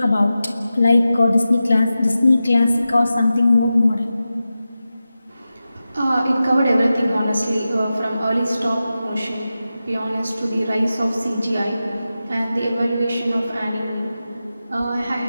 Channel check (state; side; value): inverted; both; correlation -0.93